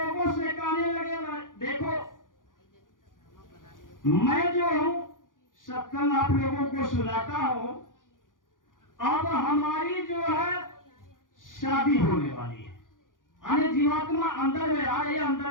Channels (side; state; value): right; late; 0.89 ms